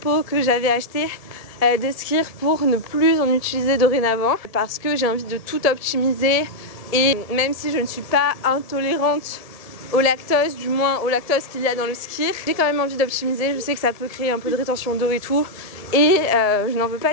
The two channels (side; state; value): right; late; 1.7 ms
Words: que j'avais achetés de skir pour ne plus en utiliser dorénavant parce que j'ai envie de tout optimiser. Et même si je ne suis pas intolérante au lactose, du moins au lactose qu'il y a dans le skir, j'ai quand même envie d'optimiser. Je sais que ça peut créer un peu de rétention d'eau et tout. Et je n'en veux pas